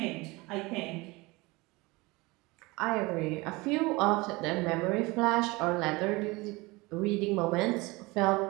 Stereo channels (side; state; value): left; quieter; 23.4 dB